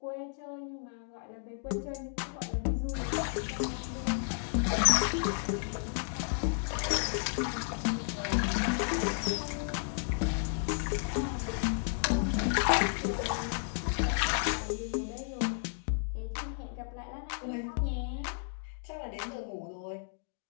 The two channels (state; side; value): silent; right; digital silence